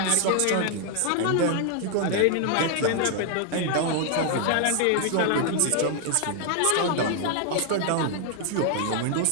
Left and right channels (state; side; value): different; both; correlation 0.00